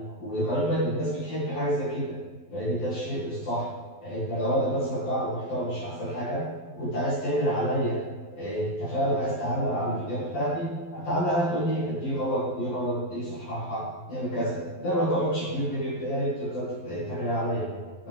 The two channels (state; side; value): late; right; 12 ms